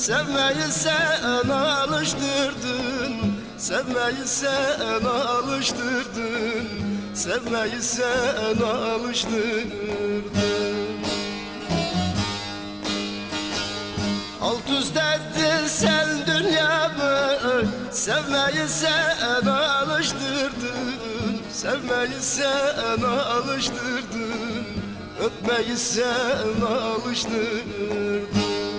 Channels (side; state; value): both; identical; correlation 1.00